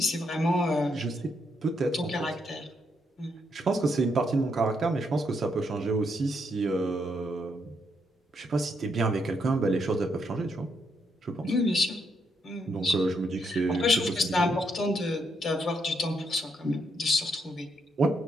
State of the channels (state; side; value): normal; both; correlation 0.77